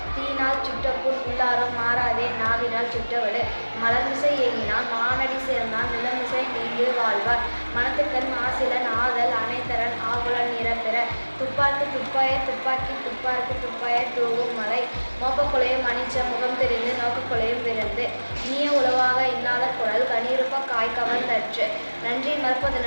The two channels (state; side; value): inverted; both; correlation -1.00